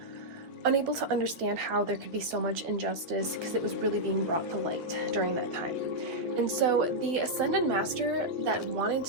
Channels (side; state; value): left; late; 11 ms